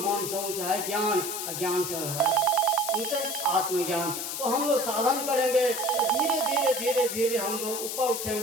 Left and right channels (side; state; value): left; noise; hiss, 4 dB below the sound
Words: से ऊंचा है ज्ञान, ज्ञान से है ऊंचा आत्मज्ञान। तो हम लोग साधन करेंगे, धीरे धीरे धीरे धीरे हम लोग ऊपर